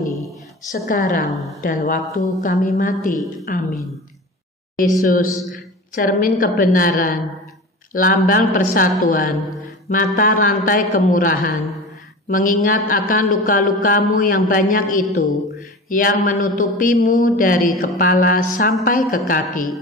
sekarang dan waktu kami mati. Amin. Yesus, cermin kebenaran, lambang persatuan, mata rantai kemurahan, mengingat akan luka-lukamu yang banyak itu, yang menutupimu dari kepala sampai ke kaki,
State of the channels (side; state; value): both; normal; correlation 0.33